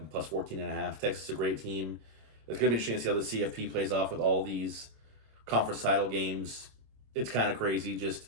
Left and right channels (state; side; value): late; left; 26 ms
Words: plus 14.5. Texas is a great team. It's going to be interesting to see how the CFP plays off with all these conference title games. It's kind of crazy